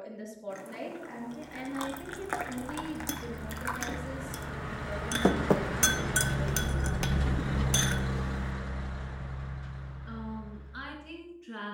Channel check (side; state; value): both; identical; correlation 1.00